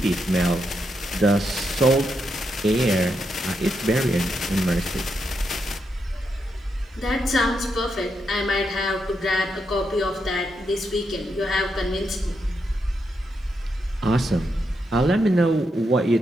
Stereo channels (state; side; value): normal; both; correlation 0.82